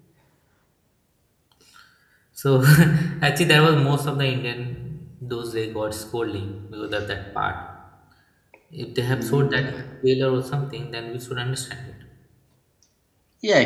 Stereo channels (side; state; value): both; identical; correlation 1.00